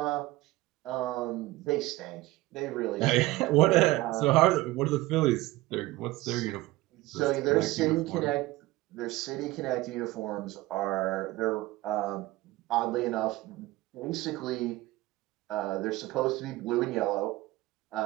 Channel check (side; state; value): left; quieter; 18.7 dB